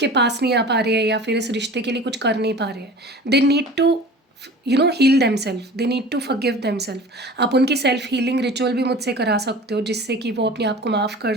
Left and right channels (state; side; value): normal; both; correlation 0.40